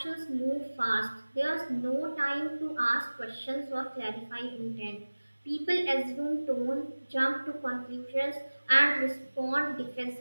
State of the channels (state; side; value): inverted; both; correlation -1.00